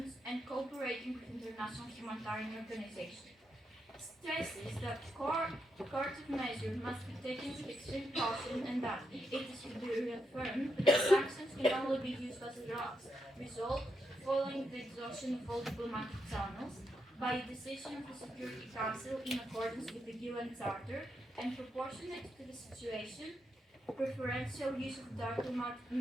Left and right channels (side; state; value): both; normal; correlation 0.82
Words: and cooperating with international humanitarian organizations. Stresses that coercive measures must be taken with extreme caution and that it is to be reaffirmed that sanctions can only be used as a last result following the exhaustion of all diplomatic channels by a decision of the Security Council in accordance with the UN Charter and proportionate to the situation, preferential use of diplomatic